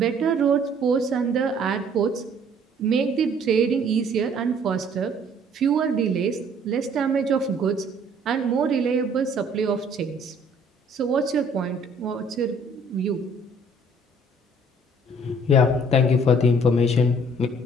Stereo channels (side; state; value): both; normal; correlation 0.58